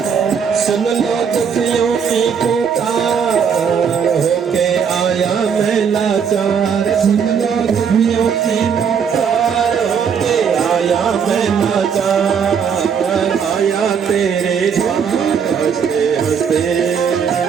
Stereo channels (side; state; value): left; quieter; 6.9 dB